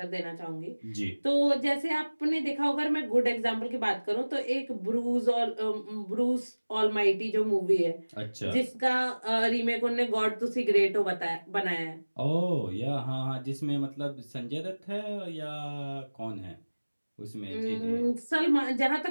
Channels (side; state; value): both; inverted; correlation -1.00